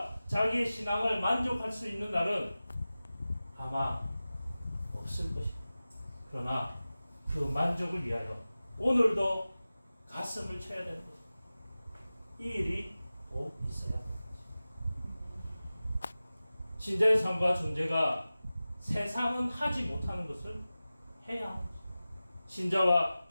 자기의 신앙을 만족할 수 있는 날은 아마 없을 것입니다. 그러나 그 만족을 위하여 오늘도 가슴을 쳐야 되는 것입니다. 이 일이 꼭 있어야 합니다. 신자의 삶과 존재가 세상은 하지 못하는 것을 해야 합니다. 신자와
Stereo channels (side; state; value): both; inverted; correlation -0.96